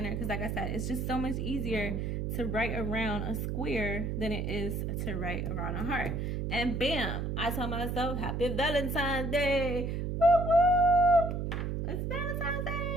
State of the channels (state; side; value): noise; right; hum, 2 dB below the sound